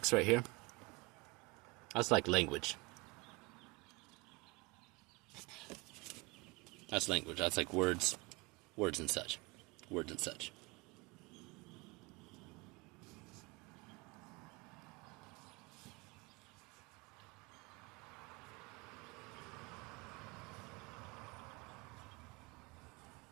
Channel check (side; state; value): left; quieter; 25.4 dB